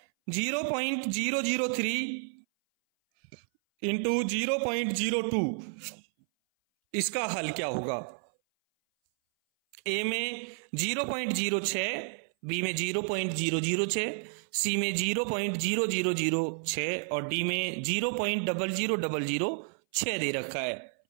0.003 इंटू 0.02, इसका हल क्या होगा? ए में 0.06, बी में 0.006, सी में 0.0006 और डी में 0.00006 दे रखा है।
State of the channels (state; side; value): silent; left; 57 dB below the other